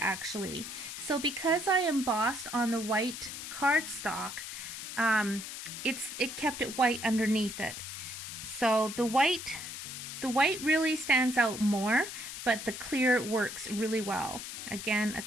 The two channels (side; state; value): left; noise; hiss, 8 dB below the sound